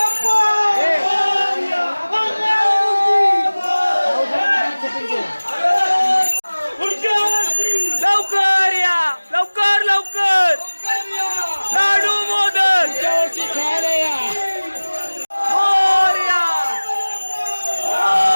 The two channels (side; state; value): both; inverted; correlation -1.00